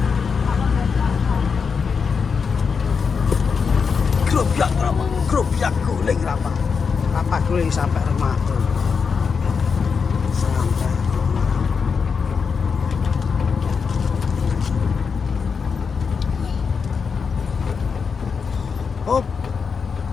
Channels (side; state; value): right; quieter; 5.7 dB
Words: Kerupiak guling rapa. Rapa guling sampai rumah tuh. Sampai rumah. Hop.